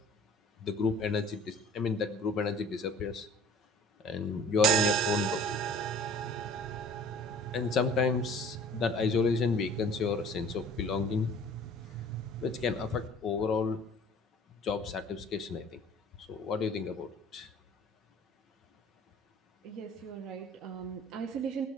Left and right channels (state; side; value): normal; both; correlation 0.48